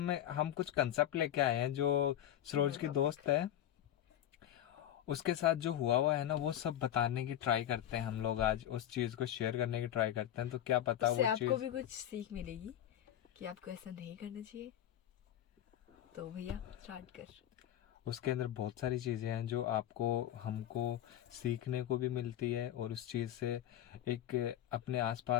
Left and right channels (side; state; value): right; quieter; 11.6 dB